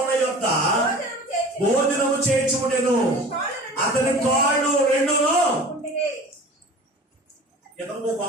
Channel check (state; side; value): normal; both; correlation 0.40